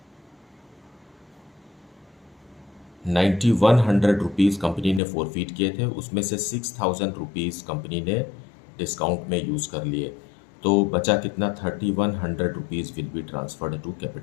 ₹9100 company ने फोरफिट किए थे, उसमें से 6000 रुपीज़ कंपनी ने डिस्काउंट में यूज़ कर लिए, तो बचा कितना? 3100 rupees will be transferred to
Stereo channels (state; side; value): drops out; right; at 5.0 s